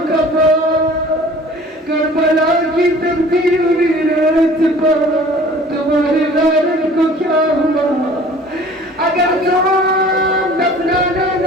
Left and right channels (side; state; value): both; normal; correlation 0.47